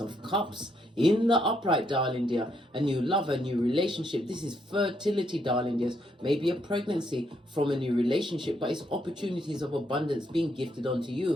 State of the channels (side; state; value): both; normal; correlation 0.75